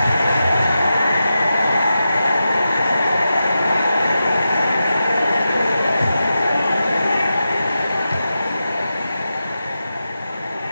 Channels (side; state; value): both; inverted; correlation -0.90